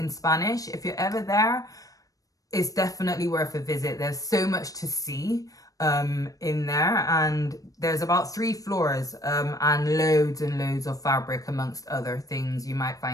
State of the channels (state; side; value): late; right; 0.17 ms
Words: Spanish. If you're ever there, it's definitely worth a visit. There's so much to see in there, and there's about 3 floors and loads of fabric amongst other things. You might